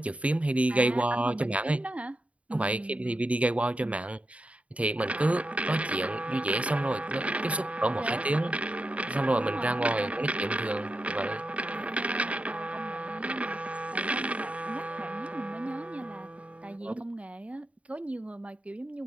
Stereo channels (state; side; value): late; left; 0.065 ms